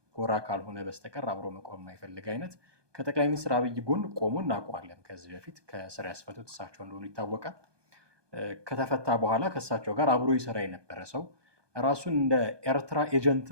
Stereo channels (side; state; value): left; late; 1.2 ms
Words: ጎራ ካልሆነ በስተቀር አብሮ መቆም የማይፈልግ አይነት ከጠቅላይ ሚኒስትር አብይ ጎን ቆሞ እናውቀዋለን። ከዚህ በፊት ከስር ያስፈቱት እሳቸው እንደሆኑ ይታወቃል። ከተፈታ በኋላ ከእሳቸው ጋር አብሮ ይሰራ የነበረ ሰው ራሱን እንደ ኤርትራ